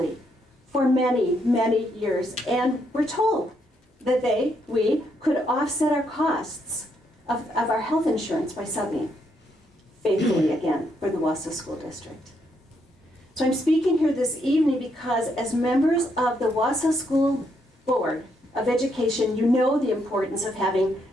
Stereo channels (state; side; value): normal; both; correlation 0.76